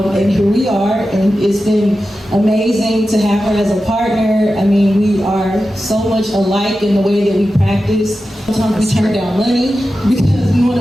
and here we are, and it's been amazing to have her as a partner. I mean, we are so much alike in the way that we practice. Sometimes we turn down money because we want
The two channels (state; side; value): normal; both; correlation 0.92